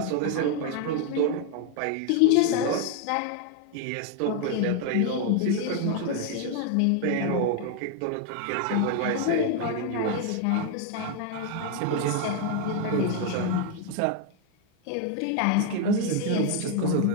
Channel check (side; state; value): both; different; correlation 0.01